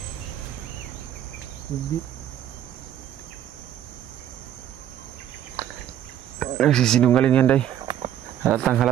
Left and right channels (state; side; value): quieter; left; 11.0 dB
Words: Hindi. Nagsisinungaling yan, day. Halatang